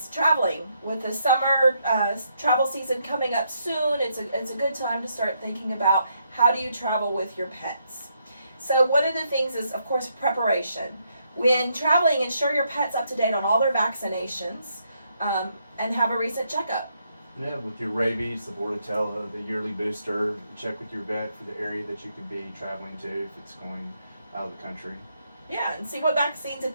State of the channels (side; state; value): both; inverted; correlation -0.76